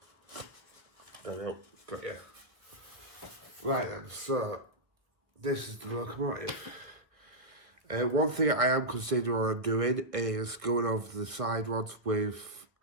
There we go. Got you. Right then, so this is the locomotive. One thing I am considering on doing is going over the side rods with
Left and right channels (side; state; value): left; late; 1.6 ms